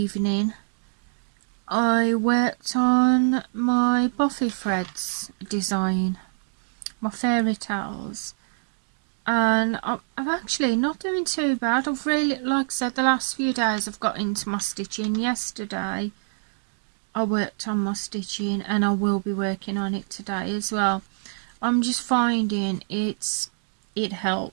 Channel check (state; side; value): silent; left; digital silence